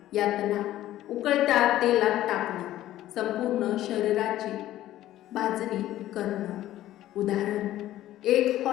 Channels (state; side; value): quieter; right; 13.9 dB